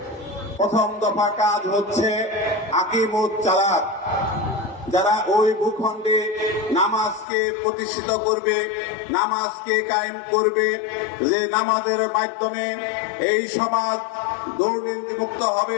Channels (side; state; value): right; drops out; at 7.2 s